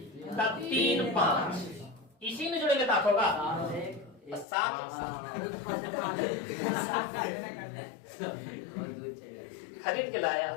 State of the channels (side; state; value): right; drops out; at 4.5 s